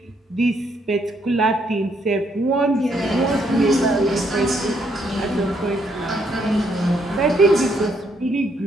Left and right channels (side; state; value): both; normal; correlation 0.72